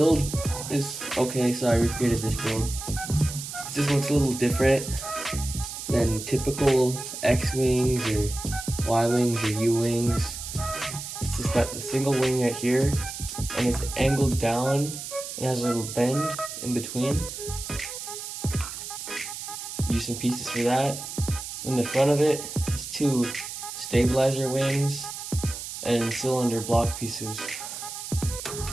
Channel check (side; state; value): right; noise; hiss, 8 dB below the sound